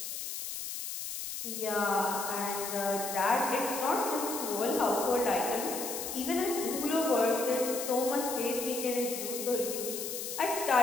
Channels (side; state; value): left; noise; hiss, 6 dB below the sound